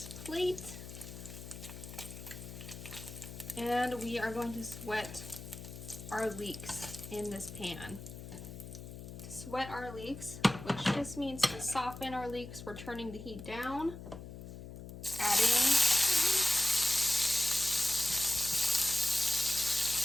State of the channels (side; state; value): left; noise; hum, 12 dB below the sound